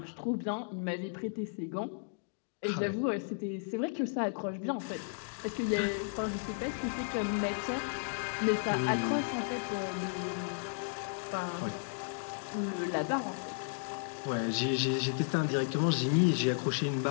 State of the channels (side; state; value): right; silent; digital silence